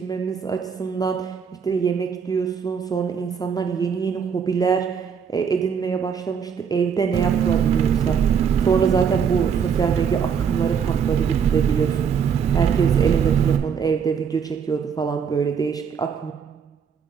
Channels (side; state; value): left; quieter; 6.9 dB